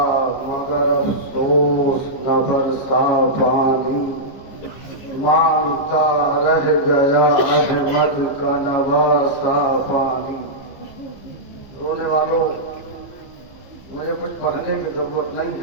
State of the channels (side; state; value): right; late; 15 ms